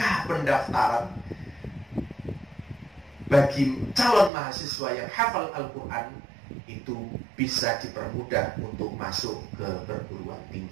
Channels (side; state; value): left; drops out; at 4.3 s